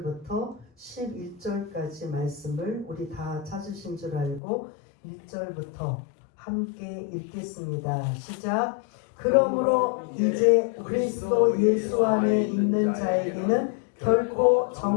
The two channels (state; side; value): drops out; right; at 4.4 s